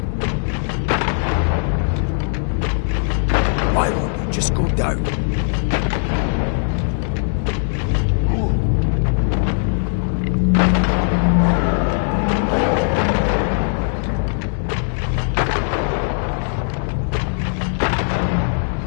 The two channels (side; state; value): right; silent; digital silence